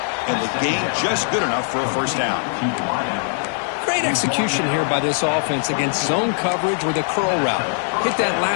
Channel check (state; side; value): silent; right; digital silence